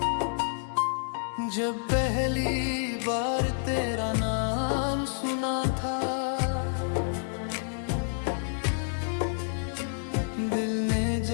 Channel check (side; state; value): right; silent; digital silence